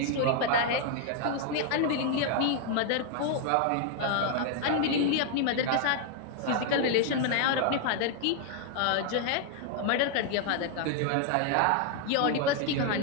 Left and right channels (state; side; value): different; both; correlation 0.00